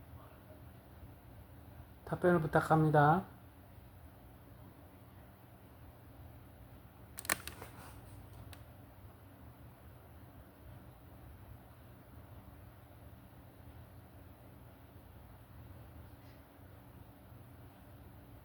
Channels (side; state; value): both; identical; correlation 1.00